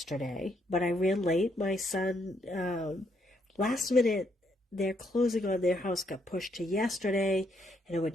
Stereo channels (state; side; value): normal; both; correlation 0.74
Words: but I ran late. My son, last minute, their closing on their house got pushed to yesterday, and I